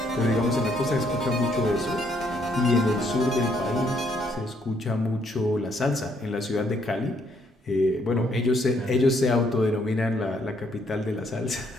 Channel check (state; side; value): normal; both; correlation 0.70